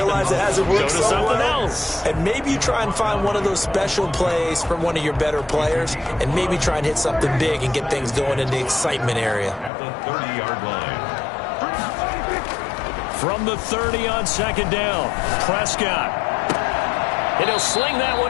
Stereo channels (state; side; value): drops out; right; at 9.7 s